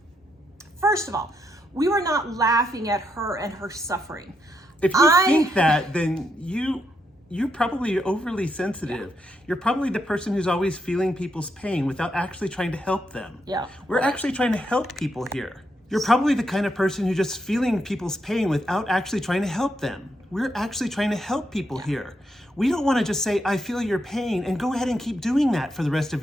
first of all, we were not laughing at her and her suffering. If you think that, then you're probably overly sensitive. Yeah. You're probably the person who's always feeling people's pain without actually trying to help them. Yeah. We're actually trying to help people here. You're probably the kind of person who's just feeling people's pain without actually trying to help them. We're actually trying to help people here. We don't want to just say, I feel your pain, and go ahead and keep doing that for the rest of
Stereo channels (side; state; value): both; normal; correlation 0.80